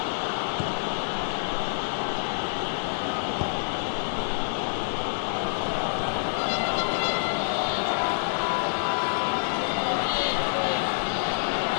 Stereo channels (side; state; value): right; silent; digital silence